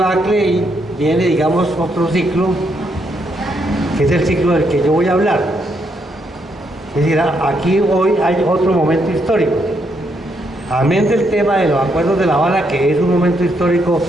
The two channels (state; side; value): normal; both; correlation 0.76